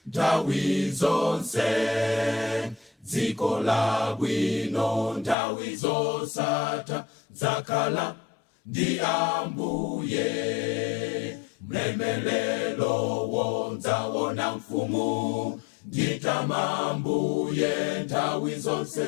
nthawi zonse. Dziko labwino nthawi zosatha zakhala ndi Ambuye. Mlemelelo wonzaona mfumu nditama Ambuye nthawi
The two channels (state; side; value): drops out; right; at 5.4 s